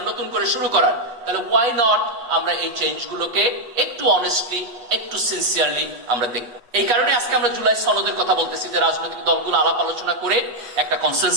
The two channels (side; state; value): left; late; 8.4 ms